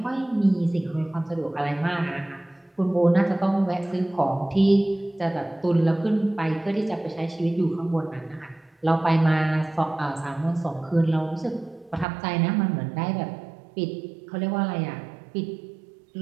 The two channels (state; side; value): drops out; left; at 12.1 s